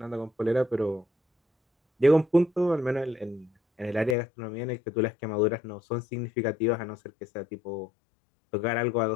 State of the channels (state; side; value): drops out; right; at 4.2 s